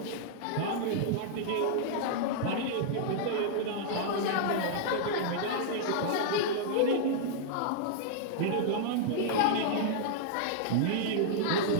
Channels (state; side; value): different; both; correlation -0.01